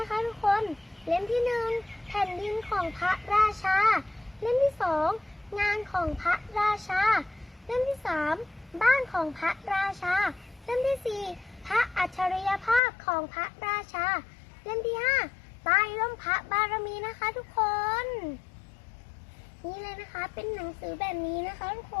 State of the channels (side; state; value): right; drops out; at 12.8 s